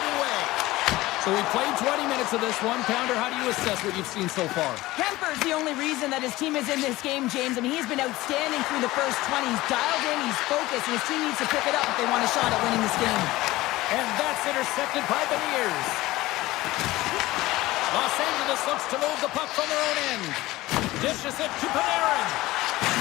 So we played 20 minutes of this one. Pounder, how do you assess what you've seen so far? Kuemper's the only reason that his team is in this game, James. I mean, he's been outstanding through the first 20. He's dialed in, he's focused, and his team needs to pick it up if they want a shot at winning this game. And that's intercepted by Beniers. Los Angeles looks to move the puck from their own end. Dishes it to Panarin.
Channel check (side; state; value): right; quieter; 18.2 dB